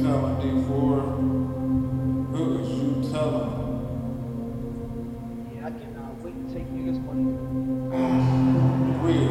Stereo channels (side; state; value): both; identical; correlation 1.00